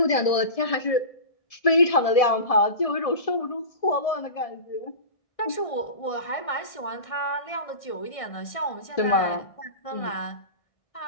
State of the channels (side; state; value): right; late; 1.7 ms